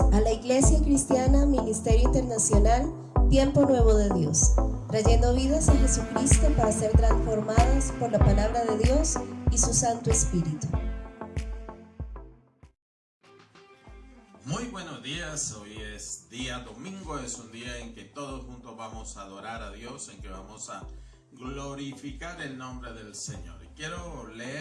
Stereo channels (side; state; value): both; identical; correlation 1.00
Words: la Iglesia Cristiana Ministerio Internacional Tiempo Nuevo de Dios, trayendo vidas a Jesucristo para ser transformadas por la palabra de Dios y su Santo Espíritu. Muy buenos días, hoy es día domingo, es un día en que todos juntos vamos a adorar a Dios, en que vamos a glorificar el nombre del Señor. Y quiero